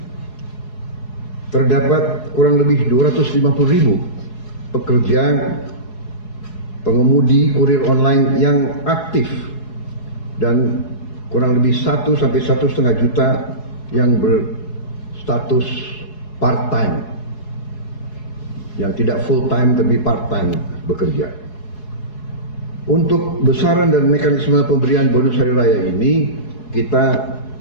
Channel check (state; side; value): late; right; 4.7 ms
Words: terdapat kurang lebih 250.000 pekerja pengemudi kurir online yang aktif dan kurang lebih 1 sampai 1,5 juta yang berstatus part-time, yang tidak full-time tapi part-time bekerja. Untuk besaran dan mekanisme pemberian bonus hari raya ini kita